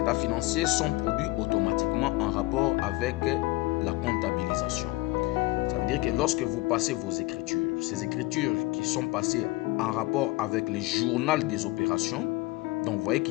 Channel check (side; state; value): right; quieter; 20.5 dB